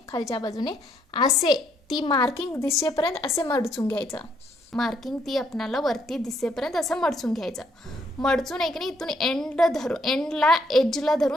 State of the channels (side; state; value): both; normal; correlation 0.71